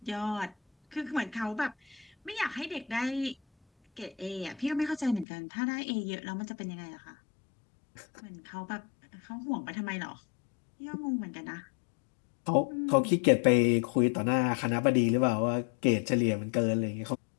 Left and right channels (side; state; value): right; drops out; at 5.2 s